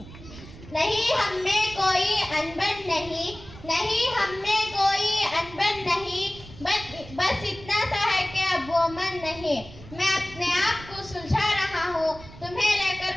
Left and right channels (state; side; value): noise; right; rumble, 17 dB below the sound